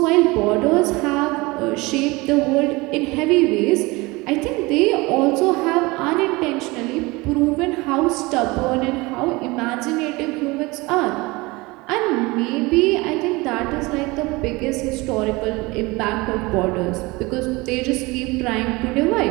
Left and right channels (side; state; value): left; quieter; 23.3 dB